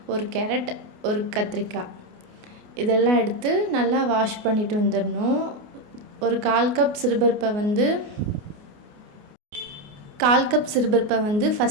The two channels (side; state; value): left; late; 29 ms